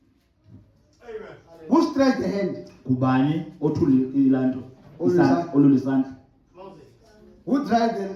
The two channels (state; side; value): identical; both; correlation 1.00